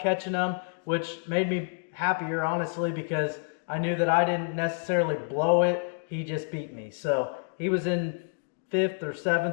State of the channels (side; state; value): right; silent; digital silence